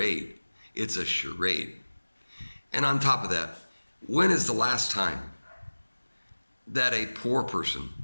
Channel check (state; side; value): inverted; both; correlation -1.00